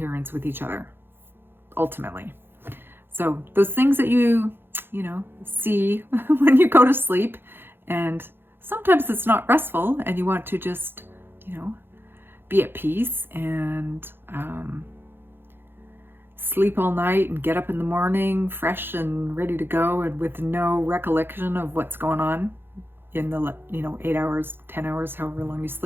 with each other, ultimately. So those things that you see when you go to sleep, and sometimes it's not restful and you want to just, be at peace and sleep all night and get up in the morning fresh and ready to go and with no recollection of what's going on in the 8 hours, 10 hours, however long you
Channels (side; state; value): left; late; 0.10 ms